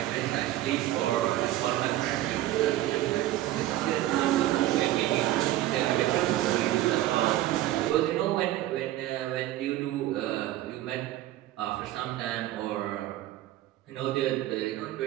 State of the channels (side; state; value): left; quieter; 14.7 dB